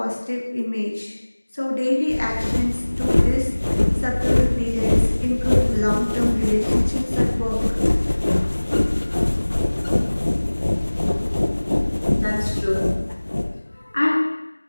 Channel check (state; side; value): inverted; both; correlation -1.00